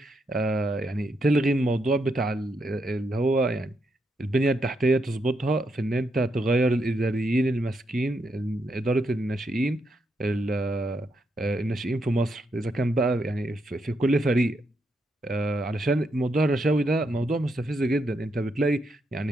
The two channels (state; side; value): normal; both; correlation 0.80